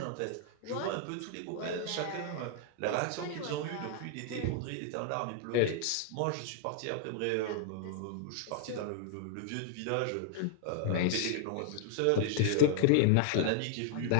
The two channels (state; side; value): different; both; correlation 0.00